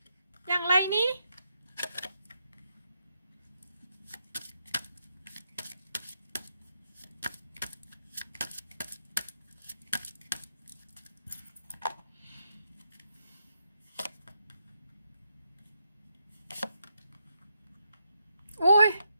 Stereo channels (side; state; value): both; inverted; correlation -0.81